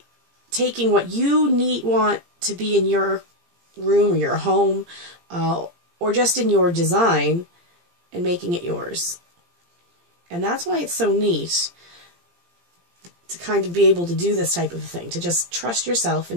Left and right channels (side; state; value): left; late; 17 ms